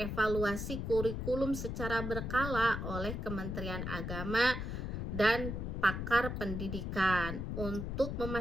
kurikulum secara berkala oleh Kementerian Agama dan pakar pendidikan untuk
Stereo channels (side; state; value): left; noise; rumble, 4 dB below the sound